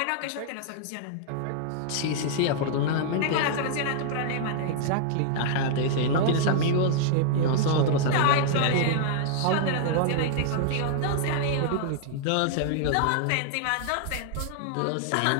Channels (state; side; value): different; both; correlation -0.01